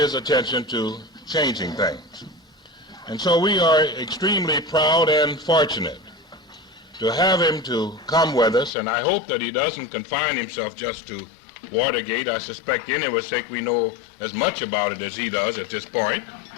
attention to changing things. And so we are extremely proud and fortunate to have him to come with us, and I hope that he doesn't confine himself just to Watergate. I suspect any of us think we know as much about it as he does at this point.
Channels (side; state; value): right; drops out; at 8.7 s